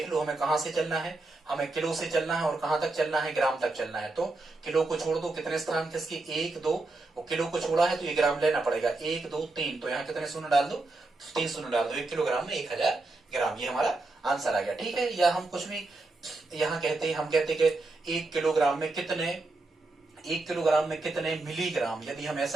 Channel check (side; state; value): left; quieter; 3.2 dB